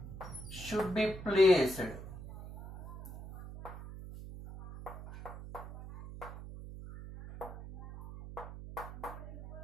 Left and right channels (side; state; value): right; noise; hum, 12 dB below the sound